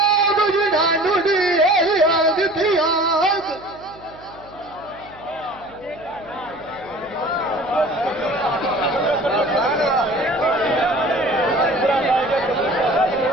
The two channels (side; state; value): right; noise; hum, 24 dB below the sound